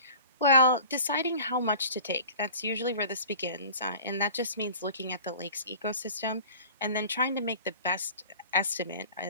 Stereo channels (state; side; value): inverted; both; correlation -0.42